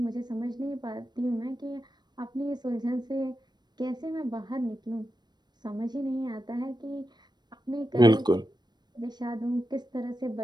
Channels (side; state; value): left; late; 0.21 ms